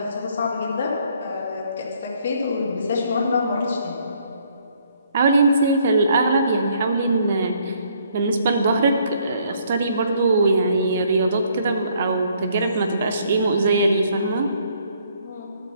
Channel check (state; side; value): inverted; both; correlation -0.66